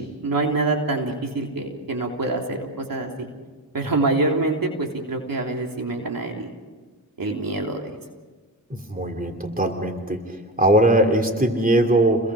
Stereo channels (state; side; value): normal; both; correlation 0.21